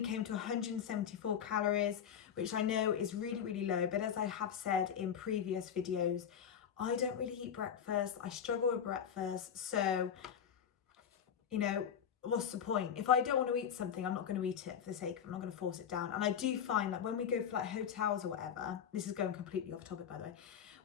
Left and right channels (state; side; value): quieter; right; 8.3 dB